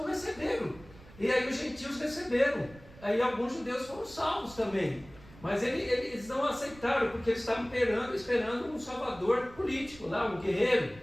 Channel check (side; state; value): right; noise; rumble, 21 dB below the sound